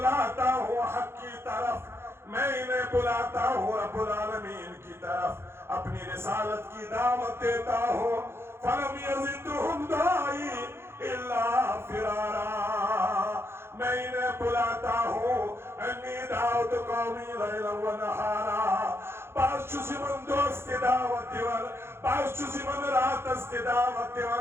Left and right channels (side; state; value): left; late; 0.12 ms